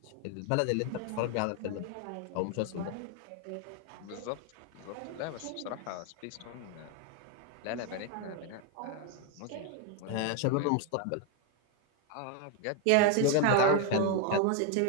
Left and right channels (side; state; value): both; different; correlation 0.01